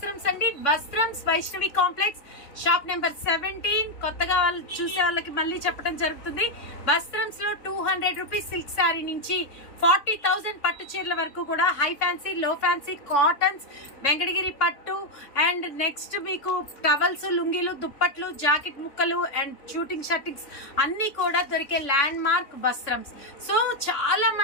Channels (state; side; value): late; right; 3.6 ms